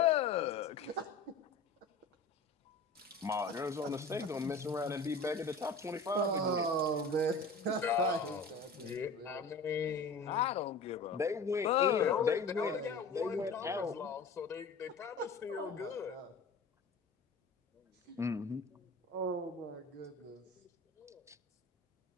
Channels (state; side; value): quieter; right; 3.7 dB